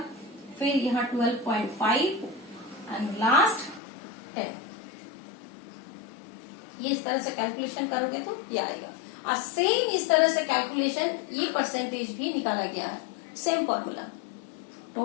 फिर यहाँ 12.5 एंड लास्ट 10। ये इस तरह से कैलकुलेशन करोगे तो ये आएगा। और सेम इस तरह से कैलकुलेशन ये परसेंटेज भी निकाला गया है, सेम फॉर्मूला।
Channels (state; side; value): drops out; right; at 3.8 s